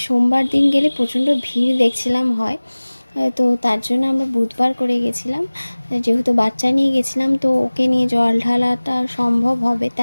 সোমবার দিন গেলে প্রচণ্ড ভিড় দেখছিলাম হয়। তো তার জন্য আমরা বুধবার করে গেছিলাম। যেহেতু বাচ্চা নিয়ে গেছিলাম, তো ওকে নিয়ে জল ঢালাটা সম্ভব হবে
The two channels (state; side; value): inverted; both; correlation -1.00